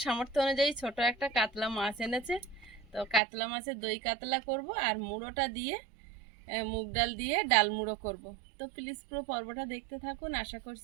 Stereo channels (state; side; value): drops out; left; at 3.2 s